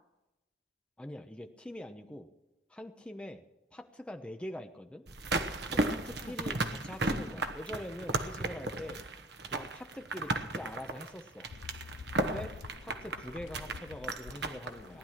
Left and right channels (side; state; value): both; normal; correlation 0.45